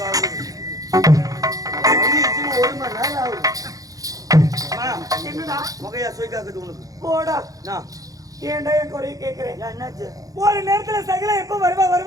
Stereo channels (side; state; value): left; late; 0.17 ms